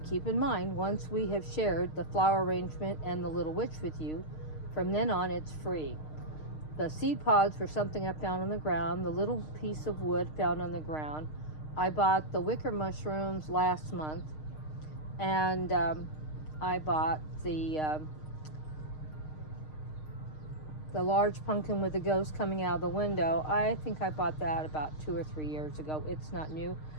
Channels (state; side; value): late; right; 6.5 ms